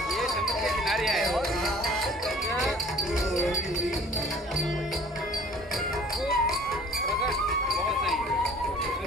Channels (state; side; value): normal; both; correlation 0.51